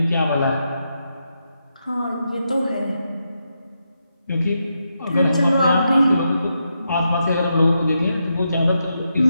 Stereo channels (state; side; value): inverted; both; correlation -0.84